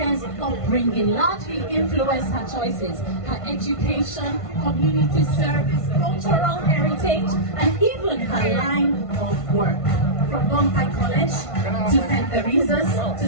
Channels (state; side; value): late; right; 1.5 ms